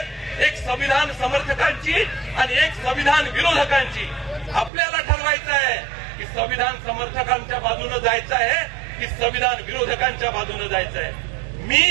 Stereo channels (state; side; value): drops out; left; at 4.7 s